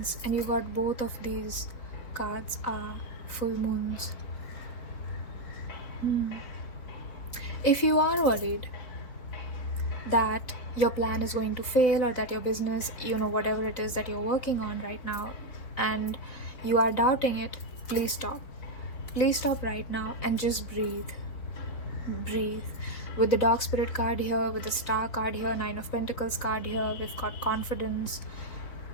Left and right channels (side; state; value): right; late; 4.1 ms